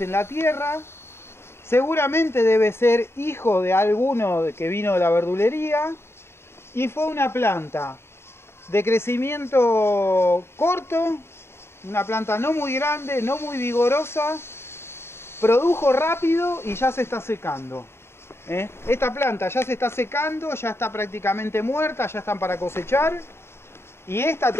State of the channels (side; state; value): right; late; 0.12 ms